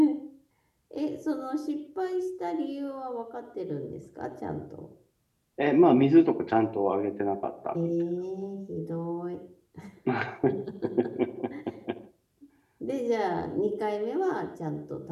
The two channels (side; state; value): both; identical; correlation 1.00